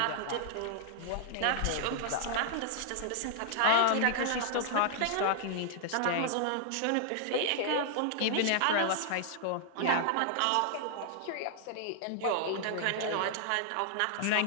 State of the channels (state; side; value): different; both; correlation -0.01